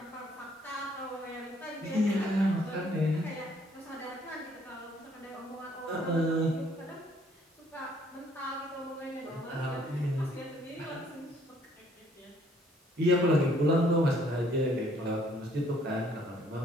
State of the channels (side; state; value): both; normal; correlation 0.63